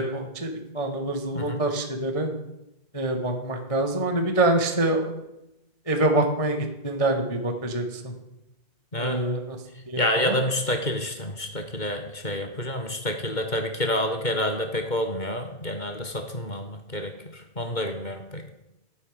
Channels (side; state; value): right; late; 2.2 ms